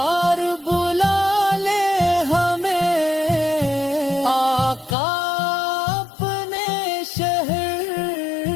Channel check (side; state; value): right; drops out; at 5.0 s